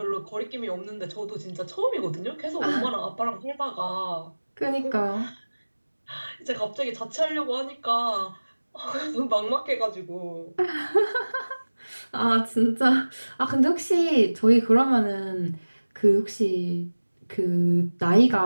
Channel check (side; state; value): both; inverted; correlation -1.00